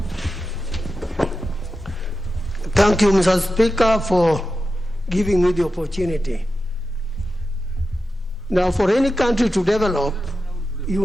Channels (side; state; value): both; normal; correlation 0.91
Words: Thank you, Mr. Speaker, for giving me the opportunity. Now, for any country to develop,